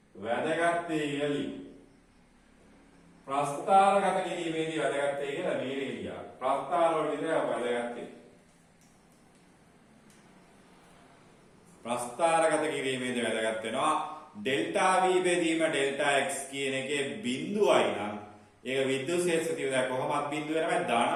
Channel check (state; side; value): identical; both; correlation 1.00